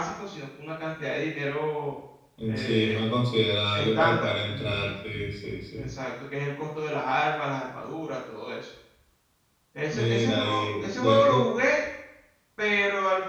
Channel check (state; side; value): identical; both; correlation 1.00